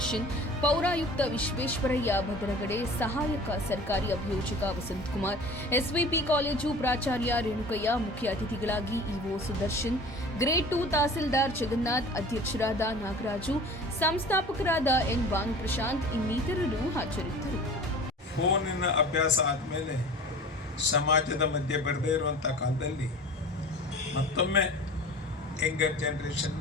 ಪೌರಾಯುಕ್ತ ವಿಶ್ವೇಶ್ವರಯ್ಯ ಭದ್ರಗಡೆ, ಸಹಾಯಕ ಸರ್ಕಾರಿ ಅಭಿಯೋಜಕ ವಸಂತಕುಮಾರ್, ಎಸ್ವಿಪಿ ಕಾಲೇಜು ಪ್ರಾಚಾರ್ಯ ರೇಣುಕಯ್ಯ, ಮುಖ್ಯ ಅತಿಥಿಗಳಾಗಿ ಇಒ ಸುದರ್ಶನ್, ಗ್ರೇಡ್ 2 ತಹಸೀಲ್ದಾರ್ ಜಗನ್ನಾಥ್, ಅಧ್ಯಕ್ಷರಾದ ನಾಗರಾಜು, ಸಂಸ್ಥಾಪಕರಾದ ಎನ್ ಭಾನುಪ್ರಶಾಂತ್ ಇನ್ನಿತರರು ಹಾಜರಿದ್ದರು. ಫೋನಿನ ಅಭ್ಯಾಸ ಆದಮೇಲೆ ಸಮಾಜದ ಮಧ್ಯೆ ಬರದೇ ಇರುವಂಥ ಕಾಲದಲ್ಲಿ ಮತ್ತೊಮ್ಮೆ ಯಂಗರ್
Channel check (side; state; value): both; normal; correlation 0.41